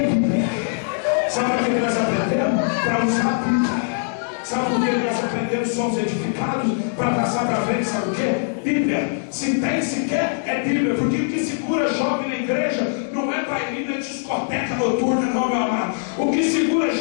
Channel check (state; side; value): silent; right; digital silence